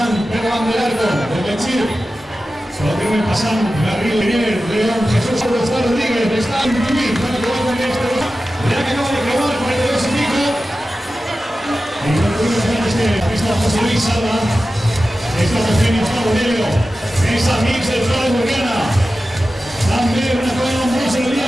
Van del Arco, de Benchir, solo tienen pasando Garrido Miguel, León, Jesús Rodríguez, está en Tubí, para que vuelvan este, ya que acaba de probar 42 y pico, y no tuvimos ganas que está José Luis Salva, está Eugenio Bonello, esa mix de Flores Burgana, también una cosa nombrosa en el día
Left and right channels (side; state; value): both; normal; correlation 0.94